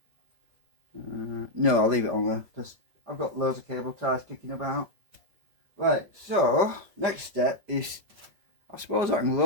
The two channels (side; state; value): left; late; 5.3 ms